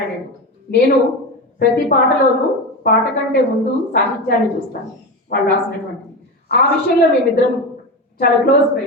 నేను ప్రతి పాటలోనూ పాట కంటే ముందు సాహిత్యాన్ని చూస్తాను, వాళ్ళు రాసినటువంటి. ఆ విషయంలో మేమిద్దరం చాలా క్లోజ్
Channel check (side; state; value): both; normal; correlation 0.21